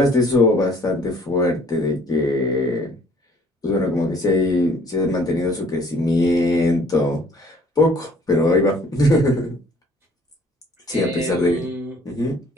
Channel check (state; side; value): normal; both; correlation 0.57